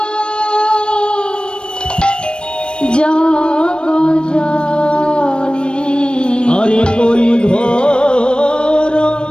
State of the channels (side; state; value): right; late; 0.055 ms